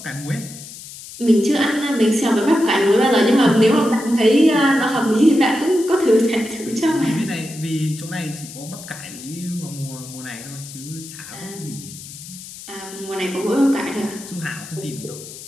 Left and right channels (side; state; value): left; noise; hiss, 14 dB below the sound